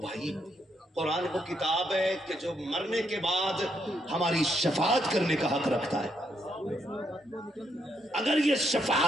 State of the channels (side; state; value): both; normal; correlation 0.76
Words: بھائی قرآن وہ کتاب ہے کہ جو مرنے کے بعد ہماری شفاعت کرنے کا حق رکھتا ہے۔ اگر یہ